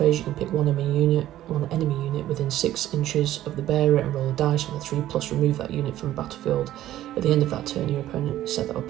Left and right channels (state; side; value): quieter; left; 13.5 dB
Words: you can pick one enemy unit within 6 inches of the bearer and roll a dice on a 3+, remove that unit from the battlefield. At the end of that turn, your opponent set that